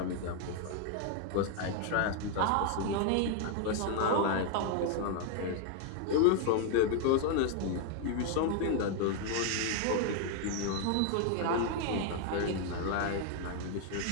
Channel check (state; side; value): different; both; correlation 0.00